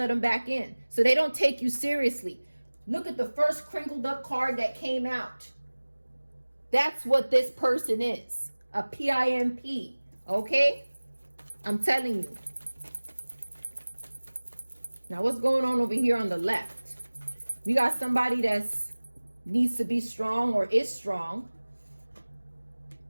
them back in. So they don't take you seriously. Look at the first crinkled up card that came out. That's what this person is. A PIMP. Okay? I'm telling you. Now what's going on over here on the left? We got somebody that's needs to be strong or is strong.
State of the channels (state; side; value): inverted; both; correlation -1.00